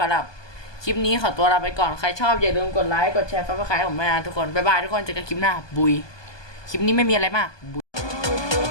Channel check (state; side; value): late; right; 1.2 ms